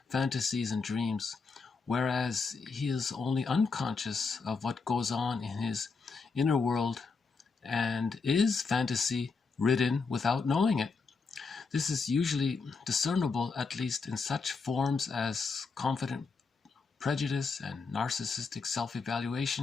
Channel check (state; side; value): quieter; right; 4.7 dB